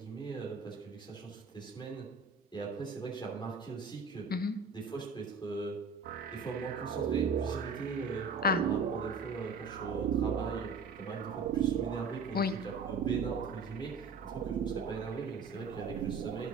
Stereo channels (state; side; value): quieter; left; 4.1 dB